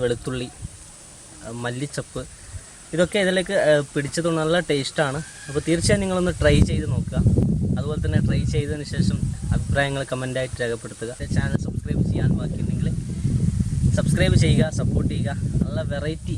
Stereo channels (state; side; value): identical; both; correlation 1.00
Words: വെളുത്തുള്ളി, മല്ലിച്ചപ്പ്, ഇതൊക്കെ ഇതിലേക്ക് പിടിച്ചത് നല്ല ടേസ്റ്റാണ്. അപ്പോൾ തീർച്ചയായും നിങ്ങളൊന്ന് ട്രൈ ചെയ്ത് നോക്കുക. അതുപോലെ തന്നെ ട്രൈ ചെയ്തതിന് ശേഷം അഭിപ്രായങ്ങൾ കമൻ്റായിട്ട് രേഖപ്പെടുത്തുക. ചാനൽ സബ്സ്ക്രൈബ് ചെയ്യാൻ ബാക്കിയുണ്ടെങ്കിൽ സബ്സ്ക്രൈബ് ചെയ്യുക, സപ്പോർട്ട് ചെയ്യുക. നല്ല വെറൈറ്റി